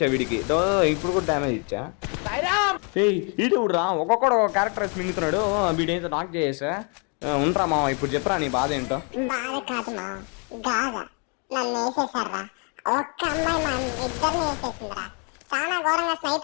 వీడికి, ఇప్పుడు కూడా డ్యామేజ్ ఇచ్చా. ఇటు రా, ఒక్కొక్కడు ఒక క్యారెక్టర్ మింగుతున్నాడు. వీడేంతో నాక్ చేసా. ఉండరా మామ, ఇప్పుడు చెప్పరా నీ బాధ ఏంటో. బాధ కాదు మా గాథ, నన్ను వేసేసారా. ఒక్క అమ్మాయి మా ఇద్దరిని వేసేసిందిరా. చాలా ఘోరంగా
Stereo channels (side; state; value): right; quieter; 36.9 dB